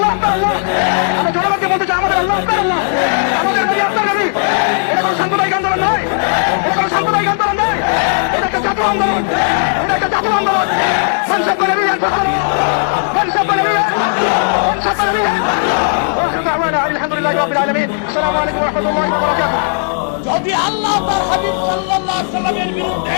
আপনার আল্লাহ। আমরা জনগণকে বলতে চাই, আমাদের আল্লাহ আপনার আল্লাহ, আমাদের নবী আপনার নবী। এটা কোনো সাম্প্রদায়িক আন্দোলন নয়, এটা কোনো সাম্প্রদায়িক আন্দোলন নয়, এটা একটা জাতীয় আন্দোলন, এটা একটা জাতীয় আন্দোলন। মানুষের করে নিয়ে মানুষের করে নিয়ে মানুষের করে নিয়ে আলহামদুলিল্লাহ রাব্বিল আলামিন। আসসালামু আলাইকুম ওয়া রাহমাতুল্লাহি ওয়া বারাকাতুহু। যদি আল্লাহ তার হাবিব সাল্লাল্লাহু আলাইহি সাল্লামের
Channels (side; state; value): right; silent; digital silence